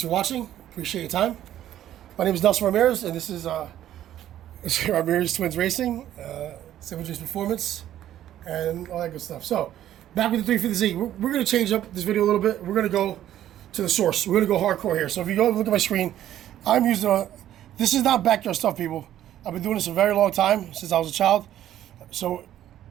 for watching, appreciate your time. My name is Nelson Ramirez and this is Ramirez Twins Racing, 7G's Performance, and all that good stuff. So, back with the 350Z, we're going to change up this video a little bit. We're going to go to the source. We're going to go hardcore here. So if you go look at my screen, I'm using this is not backyard stuff, people. I've been doing this a very long time, since I was a child. So,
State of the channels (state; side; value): quieter; left; 12.0 dB